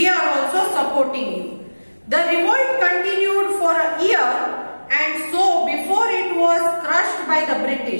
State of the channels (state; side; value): inverted; both; correlation -1.00